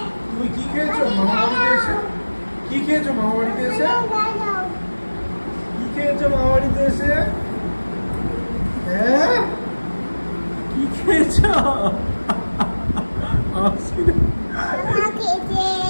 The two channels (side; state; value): both; inverted; correlation -1.00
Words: তুমি কি খেয়েছো মামা বাড়িতে এসে? কি খেয়েছো মামা বাড়িতে এসে? কি খেয়েছো মামা বাড়িতে এসে? হ্যাঁ, কি খেয়েছো?